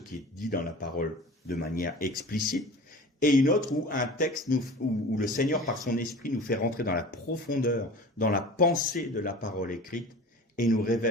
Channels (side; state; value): both; normal; correlation 0.38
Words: est dit dans la parole de manière explicite, et une autre où un texte où le Seigneur par son esprit nous fait rentrer dans la profondeur, dans la pensée de la parole écrite, et nous